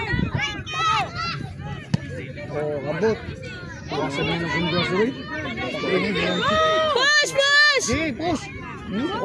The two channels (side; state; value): both; identical; correlation 1.00